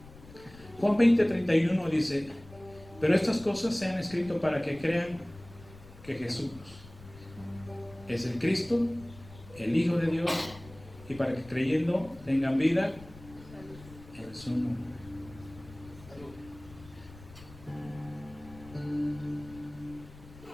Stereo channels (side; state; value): left; noise; rumble, 19 dB below the sound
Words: Juan 20:31 dice: pero estas cosas se han escrito para que crean que Jesús es el Cristo, el Hijo de Dios, y para que creyendo tengan vida en su nombre.